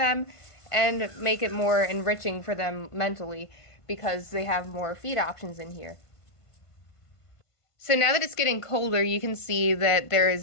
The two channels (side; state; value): right; late; 1.5 ms